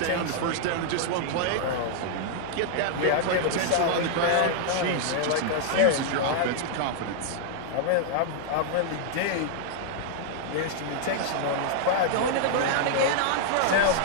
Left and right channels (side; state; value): both; different; correlation -0.01